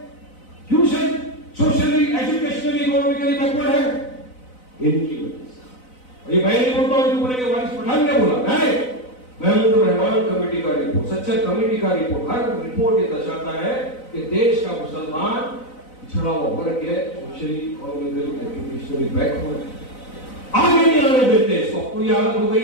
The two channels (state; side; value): late; right; 4.0 ms